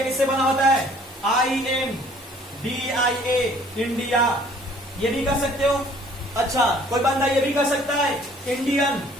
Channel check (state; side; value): normal; both; correlation 0.56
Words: किससे बना होता है? INDIA, India. ये भी कर सकते हो। अच्छा, कोई बंदा ये भी कर सकता है इंडियन,